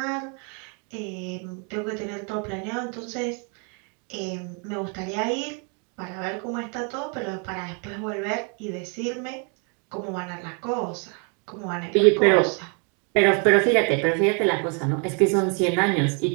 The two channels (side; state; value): left; quieter; 37.7 dB